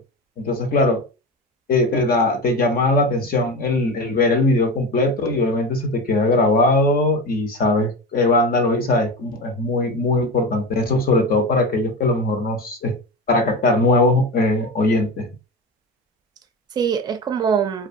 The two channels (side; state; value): both; normal; correlation 0.25